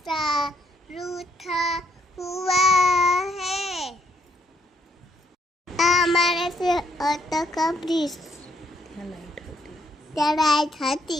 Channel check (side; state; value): both; normal; correlation 0.70